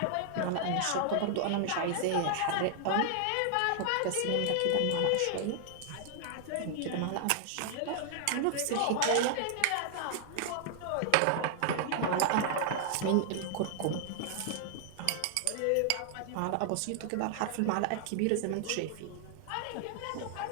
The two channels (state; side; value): different; both; correlation 0.00